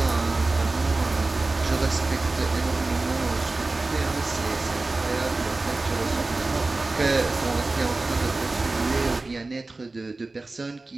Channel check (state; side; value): quieter; left; 3.3 dB